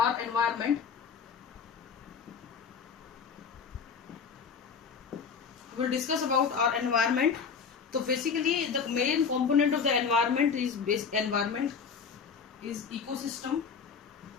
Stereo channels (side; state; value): right; quieter; 6.1 dB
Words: environment. We will discuss about our environment. So basically the main component of the environment is ecosystem.